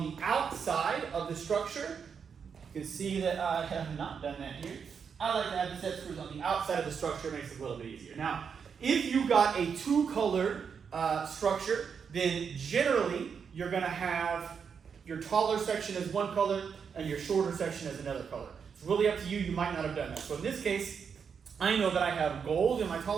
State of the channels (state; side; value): quieter; left; 6.5 dB